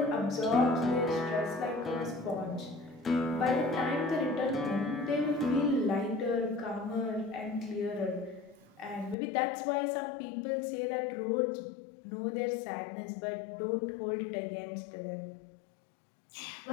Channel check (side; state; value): right; drops out; at 9.2 s